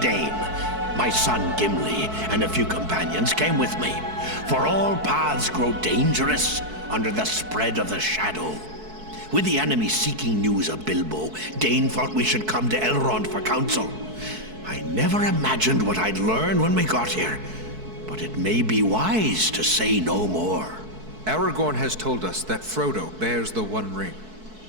My son Gimli and a few companions came with me, for all paths grow dangerous under the spread of the shadow. With the enemy seeking news of Bilbo, Dain thought we should come to Elrond for counsel. I never imagined what I'd learn when we got here, but it may be wise to say no more. Aragorn has told us that Frodo bears the One Ring.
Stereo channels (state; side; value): late; left; 4.6 ms